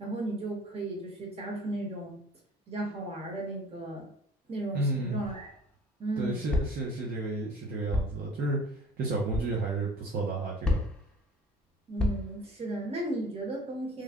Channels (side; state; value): both; normal; correlation 0.48